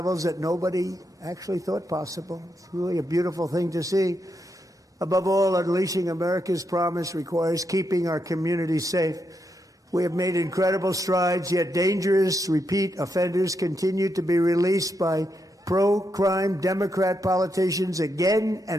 that nobody actually thought possible. It's really a beautiful thing to see. Above all, unleashing America's promise requires keeping our communities safe. We have made incredible strides, yet dangerous repeat offenders continue to be released by pro-crime Democrat politicians again and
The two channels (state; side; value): normal; both; correlation 0.82